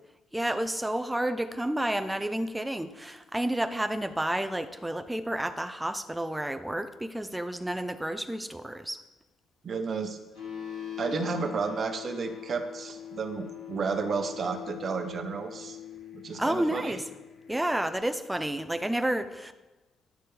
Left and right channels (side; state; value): both; normal; correlation 0.91